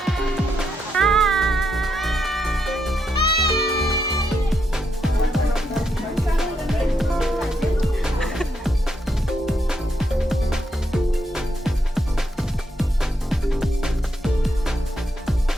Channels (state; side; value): normal; both; correlation 0.80